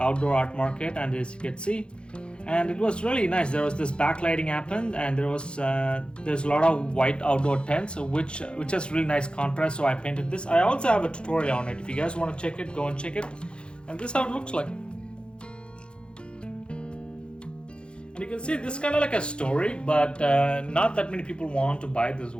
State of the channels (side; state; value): right; late; 0.055 ms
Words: art market, and as you can see, and it was really nice. There was this backlighting happened, and there's a lot of white outdoor tents, which has really nice contrast. So I painted this. I also have a tutorial on it. If you guys want to check it, go and check it. And this is how it looks like. And you can see this is kind of like a story, but not that many people want to buy this